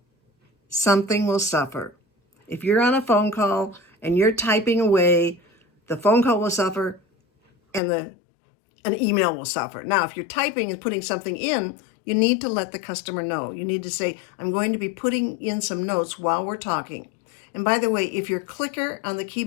Something will suffer. If you're on a phone call and you're typing away, the phone call will suffer and an email will suffer. Now, if you're typing and putting something in, you need to let the customer know. You need to say, I'm going to be putting in some notes while we're talking. And by the way, if your clicker on the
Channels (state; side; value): drops out; right; at 7.8 s